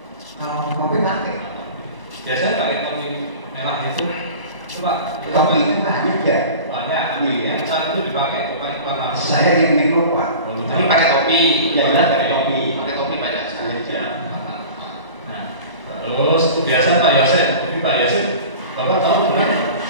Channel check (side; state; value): left; late; 1.0 ms